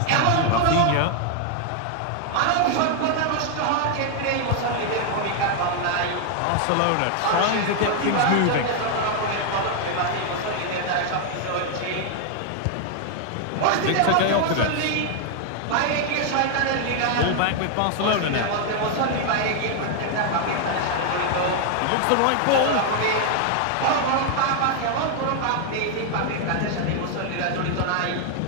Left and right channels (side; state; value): both; different; correlation 0.00